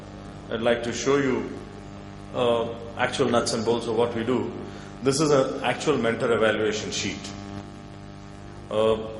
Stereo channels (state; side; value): identical; both; correlation 1.00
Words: I'd like to show you actual nuts and bolts of what we do. This is an actual mentor evaluation sheet.